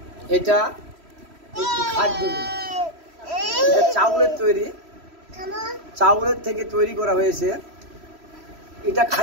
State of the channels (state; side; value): late; left; 3.1 ms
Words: এটা একটি খাদ্য, এটা চাউলের তৈরি, চাউলের থেকে তৈরি করা হয়েছে। এটা